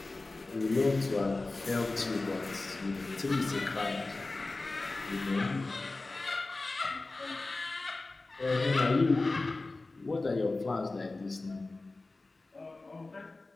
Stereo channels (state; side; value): quieter; right; 3.3 dB